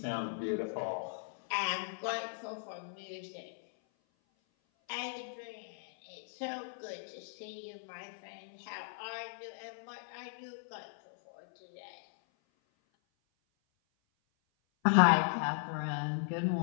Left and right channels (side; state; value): right; silent; 53 dB below the other